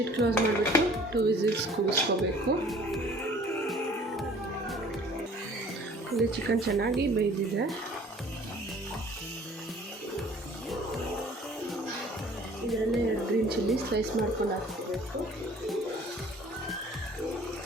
ಕ್ಲೋಸ್ ಮಾಡಿಬಿಟ್ಟು 2 ವಿಸಿಲ್ಸ್ ಕೂಗಿಸ್ಕೋಬೇಕು. ಇಲ್ಲಿ ಚಿಕನ್ ಚೆನ್ನಾಗಿ ಬೇಯ್ದಿದೆ. ಇದರಲ್ಲೇ 2 ಗ್ರೀನ್ ಚಿಲ್ಲಿ ಸ್ಲೈಸ್ ಮಾಡ್ಕೊಂಡು ಹಾಕ್ಕೋಬೇಕು.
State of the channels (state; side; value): normal; both; correlation 0.52